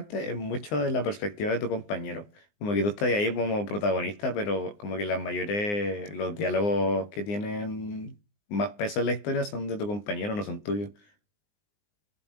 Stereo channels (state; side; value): late; right; 19 ms